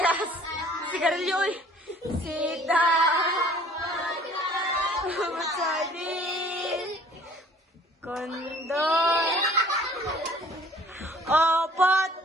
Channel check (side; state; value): both; normal; correlation 0.53